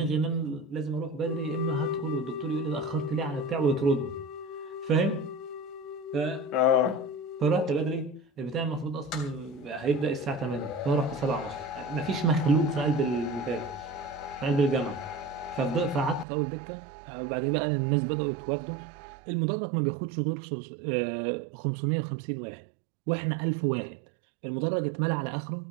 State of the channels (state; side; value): drops out; left; at 16.2 s